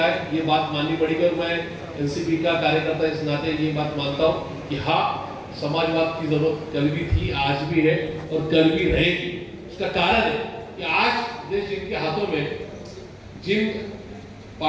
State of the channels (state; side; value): identical; both; correlation 1.00